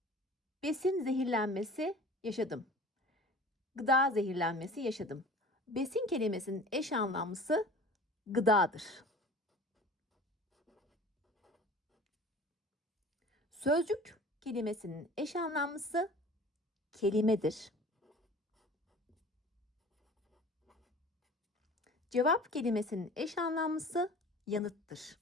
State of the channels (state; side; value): normal; both; correlation 0.43